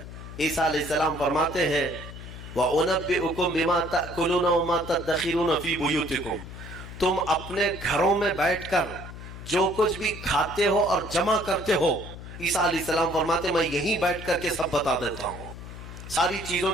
عیسیٰ علیہ السلام فرماتے ہیں وَأُنَبِّئُكُم بِمَا تَأْكُلُونَ وَمَا تَدَّخِرُونَ فِي بُيُوتِكُمْ، تم اپنے گھروں میں بیٹھ کر جو کچھ بھی کھاتے ہو اور جمع کرتے ہو، عیسیٰ علیہ السلام فرماتے ہیں میں یہیں بیٹھ کر کے سب بتا دیتا ہوں، ساری چیزوں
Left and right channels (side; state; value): left; noise; hum, 12 dB below the sound